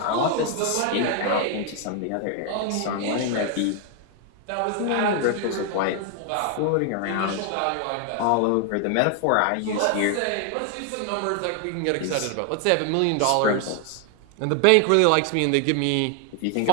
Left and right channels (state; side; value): different; both; correlation 0.00